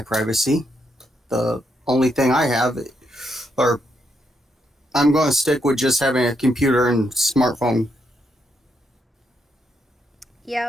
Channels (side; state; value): both; normal; correlation 0.78